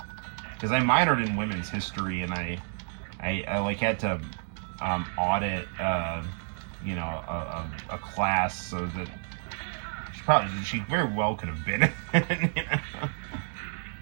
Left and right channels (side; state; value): left; silent; 58 dB below the other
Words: Because I minored in women's history, and I had to audit a class, so that she very well could have been in it.